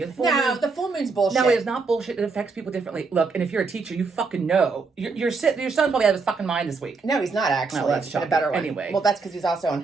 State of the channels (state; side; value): quieter; left; 4.4 dB